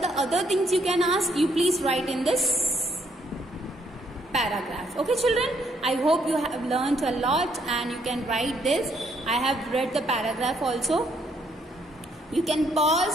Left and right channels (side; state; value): both; normal; correlation 0.70